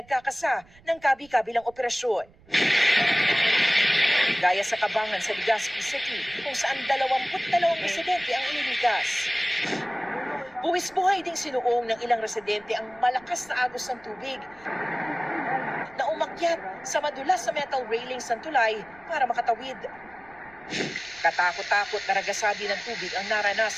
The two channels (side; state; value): right; noise; rumble, 27 dB below the sound